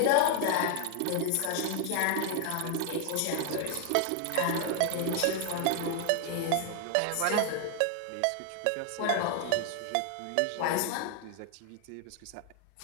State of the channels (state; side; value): different; both; correlation 0.00